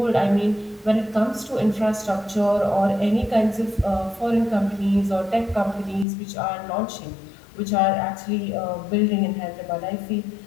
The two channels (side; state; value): right; drops out; at 6.1 s